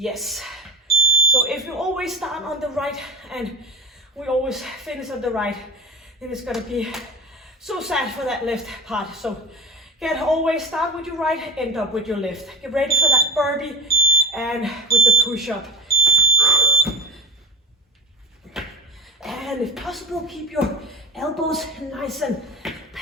So if you always start on the right and we always finish on the right, then it's gonna be so sad for that left part. So always start with your right, end up with your left. Get ready for that burpee and with the push-up. And if possible, keep your elbows nice and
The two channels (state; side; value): normal; both; correlation 0.25